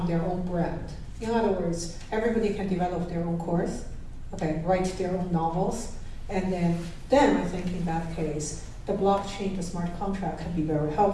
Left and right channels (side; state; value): both; identical; correlation 1.00